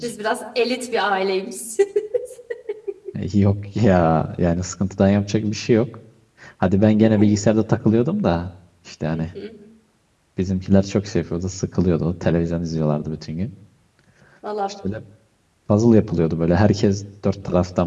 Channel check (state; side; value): identical; both; correlation 1.00